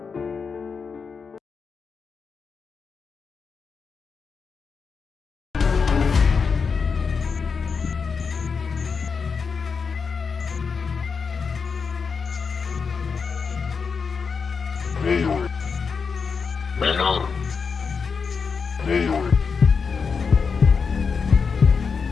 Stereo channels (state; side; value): quieter; right; 5.5 dB